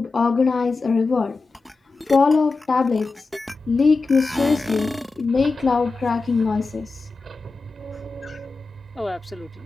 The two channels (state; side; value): quieter; right; 3.9 dB